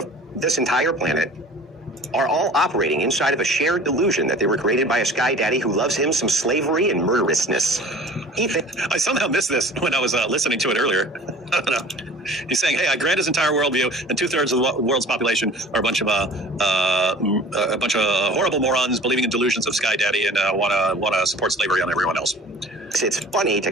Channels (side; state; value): both; normal; correlation 0.44